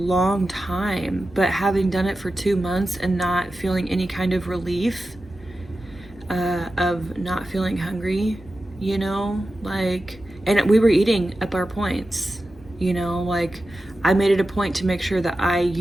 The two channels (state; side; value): normal; both; correlation 0.93